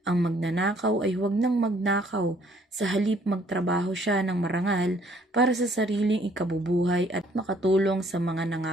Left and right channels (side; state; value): both; normal; correlation 0.62